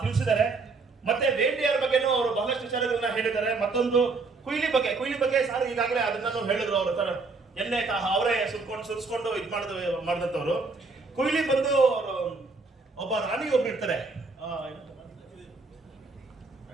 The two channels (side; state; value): left; quieter; 4.0 dB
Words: ತಿಳಿಸಿದ್ದಾರೆ. ಮತ್ತೆ ವೇಂಡಿಯಾರ್ ಬಗ್ಗೆನೂ ಅವರು ಬಹಳಷ್ಟು ವಿಚಾರಗಳನ್ನ ಹೇಳಿದ್ದಾರೆ. ಮತ್ತೊಂದು ಕುಯ್ಲಿ ಬಗ್ಗೆ ಸಾರ್ ಈಗಾಗಲೇ ಅದನ್ನ ಹೇಳಿದ್ರು. ಅವರು ತರ ಎಣ್ಣೆ ಅವರೇ ಸುರಿಸ್ಕೊಂಡು ಇದು ಮಾಡಿದಂತವ್ರು. ಕುಯ್ಲಿ ಬಂದು ಒಬ್ಬ ರಾಣಿ ಒಬ್ರು ಇರ್ತಾರೆ,